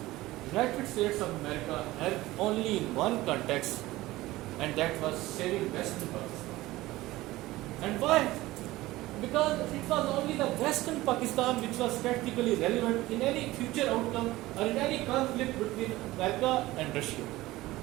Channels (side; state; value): left; quieter; 18.0 dB